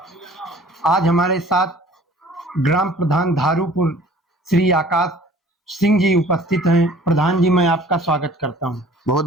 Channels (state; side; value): normal; both; correlation 0.50